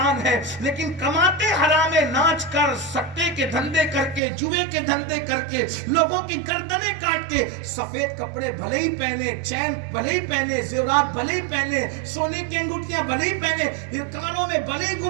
ہے، لیکن کماتے حرام ناچ کر، سٹے کے دھندے کر کے، جوئے کے دھندے کر کے، لوگوں کی گردنیں کاٹ کے، سفید کپڑے بھلے ہی پہنے، چین بھلے ہی پہنے، زیورات بھلے ہی پہنے، سونے کی انگوٹھیاں بھلے ہی پہنے، یہ کانوں میں بھلے ہی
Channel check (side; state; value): left; drops out; at 4.2 s